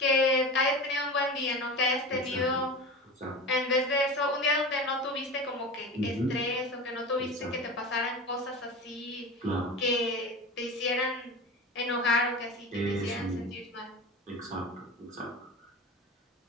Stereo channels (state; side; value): normal; both; correlation 0.30